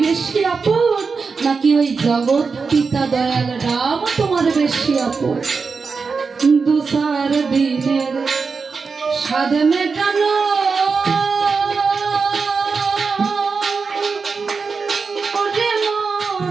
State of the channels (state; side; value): quieter; left; 4.9 dB